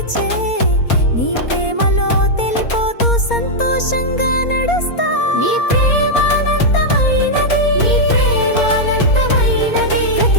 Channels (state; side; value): late; right; 4.3 ms